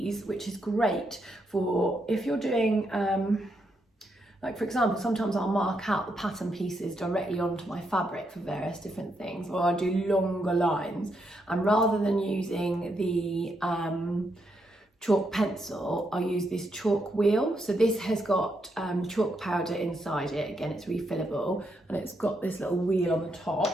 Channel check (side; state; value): both; normal; correlation 0.80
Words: which is great for if you're doing, like for example, sometimes I'll mark out the pattern pieces directly onto my fabric for various different things, or I do longer lines, and rather than using the chalk pencil, I use this chalk wheel. So this has got chalk powder inside it. Again, it's refillable, and it's got this little wheel on the